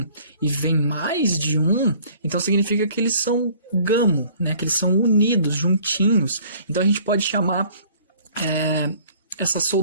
e vem mais de um, então significa que eles são gamo, né? Que eles são unidos, juntinhos. Então, a gente pode chamar essa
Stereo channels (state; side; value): inverted; both; correlation -0.54